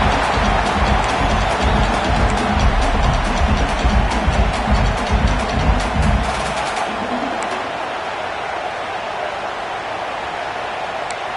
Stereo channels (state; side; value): identical; both; correlation 1.00